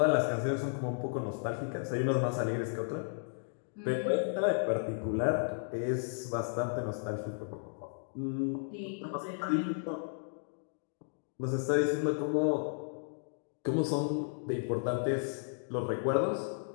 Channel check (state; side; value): silent; right; digital silence